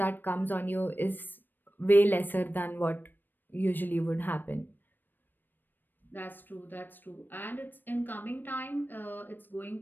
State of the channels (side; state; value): right; late; 0.092 ms